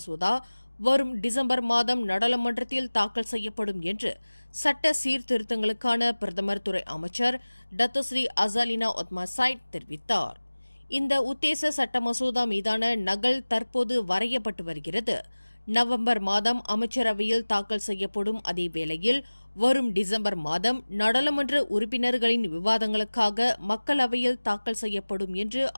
வரும் டிசம்பர் மாதம் நாடாளுமன்றத்தில் தாக்கல் செய்யப்படும் என்று சட்ட சீர்திருத்தங்களுக்கான பிரதமர் துறை அமைச்சர் டத்தோஸ்ரீ அசாலினா ஒத்மாசைட் தெரிவித்தார். இந்த உத்தேச சட்ட மசோதா மீதான நகல் தற்போது வரையப்பட்டு வருகிறது. நவம்பர் மாதம் அமைச்சரவையில் தாக்கல் செய்யப்படும் அதே வேளையில் வரும் டிசம்பர் மாதம் நாடாளுமன்ற உறுப்பினர்களின் விவாதங்களுக்காக மக்களவையில் தாக்கல் செய்யப்படும் என்று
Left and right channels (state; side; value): inverted; both; correlation -1.00